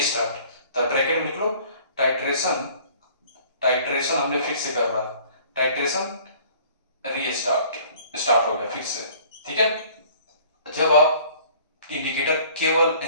तो ब्रैकेट में लिख लो टाइट्रेशन हमने फिर से करना, टाइट्रेशन स्टार्ट हो गया फिर से। ठीक है, जब आप इंडिकेटर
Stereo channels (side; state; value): both; inverted; correlation -0.52